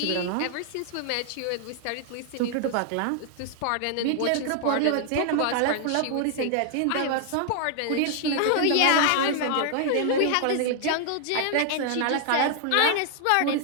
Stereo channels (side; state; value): both; different; correlation 0.00